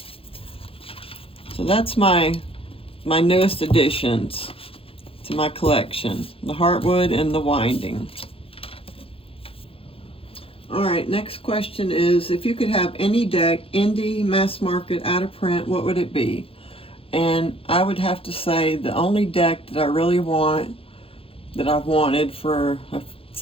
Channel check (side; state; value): right; late; 0.27 ms